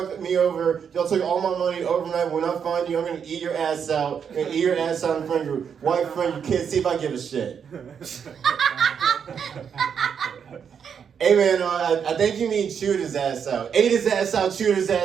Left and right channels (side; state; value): left; quieter; 7.3 dB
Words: me over. Y'all took all my money overnight. When I find you, I'm gonna eat your ass out. I'm gonna eat your ass out in front of your wife, friend, your kids. See if I give a shit. Hey man, I think you mean chewed his ass out. Ate his ass out, chewed his